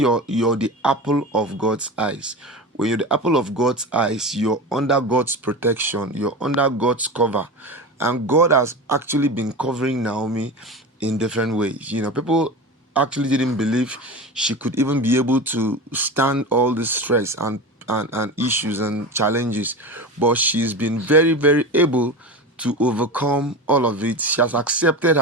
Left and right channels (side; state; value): both; normal; correlation 0.27